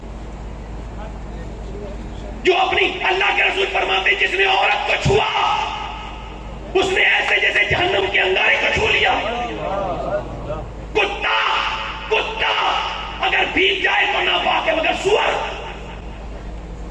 جو اپنی اللہ کے رسول فرماتے جس نے عورت کو چھوا اس نے ایسے جیسے جہنم کے انگارے کو چھو لیا. کتا اگر بھیگ جائے تو ناپاک ہے, مگر سور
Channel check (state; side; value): identical; both; correlation 1.00